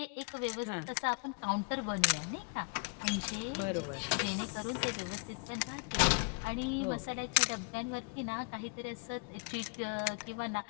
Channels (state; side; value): quieter; right; 34.8 dB